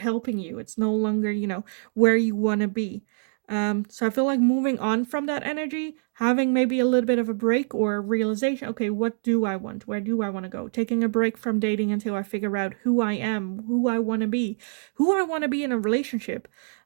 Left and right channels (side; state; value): left; silent; digital silence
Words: you. It's no longer, where you want to be. So I feel like moving on from that energy, having maybe a little bit of a break or a realization, okay, what do I want? Where do I want to go? Taking a break from dating until I figure out who I am, who I want to be, who I want to be in a relationship,